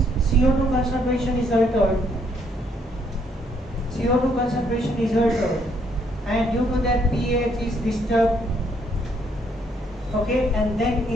CO2 concentration is altered. CO2 concentration is altered, and due to that pH is disturbed. Okay, and then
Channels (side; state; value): both; normal; correlation 0.69